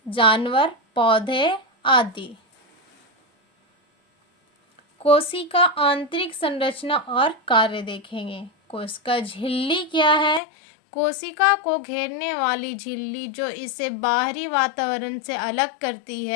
जानवर, पौधे आदि। कोशिका आंतरिक संरचना और कार्य देखेंगे। कोशिका झिल्ली क्या है? कोशिका को घेरने वाली झिल्ली जो इसे बाहरी वातावरण से अलग करती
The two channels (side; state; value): right; drops out; at 10.4 s